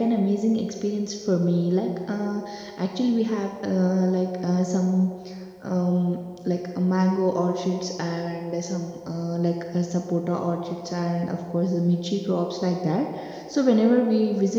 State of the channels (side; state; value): both; identical; correlation 1.00